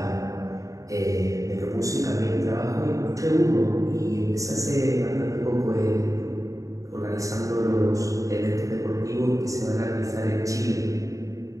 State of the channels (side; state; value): left; late; 0.16 ms